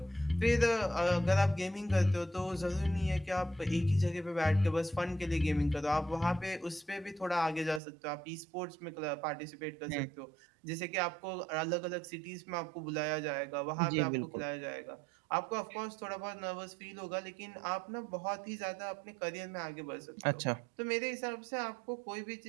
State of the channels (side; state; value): left; drops out; at 7.8 s